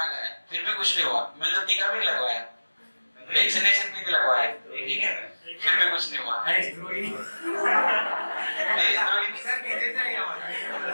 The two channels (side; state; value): both; inverted; correlation -1.00